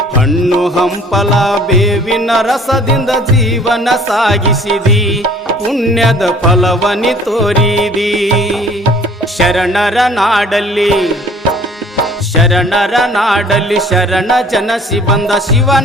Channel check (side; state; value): both; normal; correlation 0.53